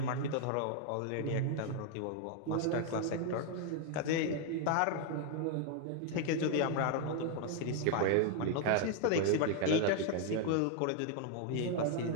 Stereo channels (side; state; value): both; different; correlation 0.00